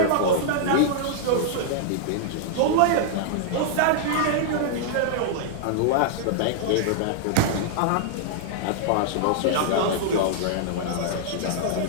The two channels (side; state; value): both; different; correlation -0.01